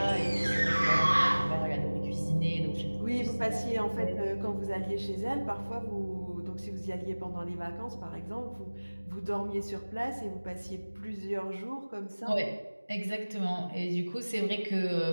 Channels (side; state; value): both; inverted; correlation -1.00